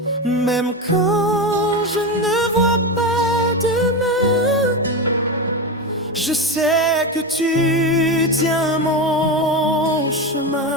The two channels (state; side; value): normal; both; correlation 0.17